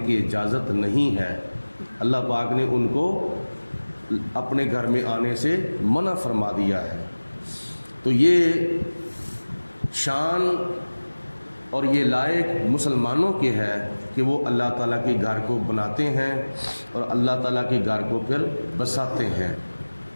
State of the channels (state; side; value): inverted; both; correlation -1.00